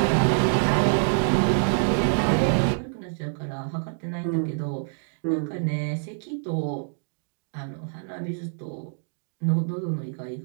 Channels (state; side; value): silent; left; digital silence